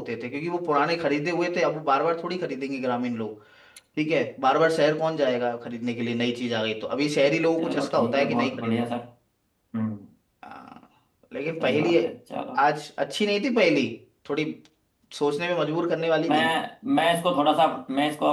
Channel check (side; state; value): both; identical; correlation 1.00